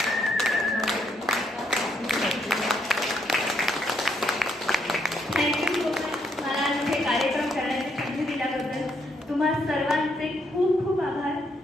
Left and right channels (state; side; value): normal; both; correlation 0.74